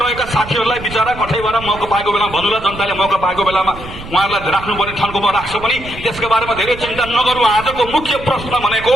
साथीहरूलाई बिचारा कठैबाट मौका पाएको बेलामा भन्नुला, जनताले मौका पाएको बेलामा उहाँहरूलाई राख्नुपर्ने ठाउँमा राख्छ पनि, त्यसको बारेमा धेरै चिन्ता नगरौँ। आजको मुख्य प्रश्न भनेको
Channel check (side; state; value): right; noise; rumble, 13 dB below the sound